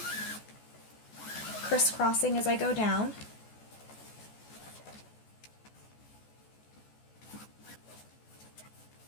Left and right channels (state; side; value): late; right; 14 ms